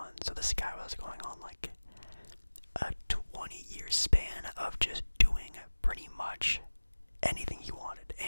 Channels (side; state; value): both; inverted; correlation -1.00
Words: So this guy was going on like a 20-year span of just doing pretty much anything he wanted.